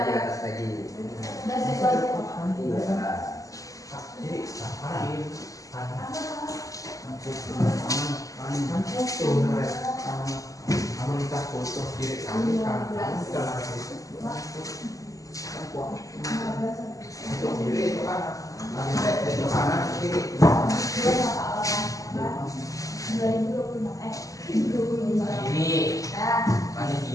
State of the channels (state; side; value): late; right; 0.16 ms